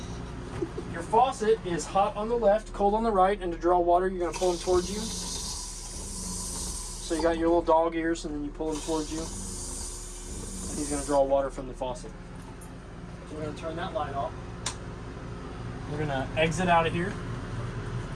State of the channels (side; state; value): both; identical; correlation 1.00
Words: Your faucet is hot on the left, cold on the right, and to draw water, you're going to pull them towards you. So you got your little dog ears, and then you pull them towards you. And he's going to draw water from the faucet. So we're going to turn that light off. We're going to exit out of here.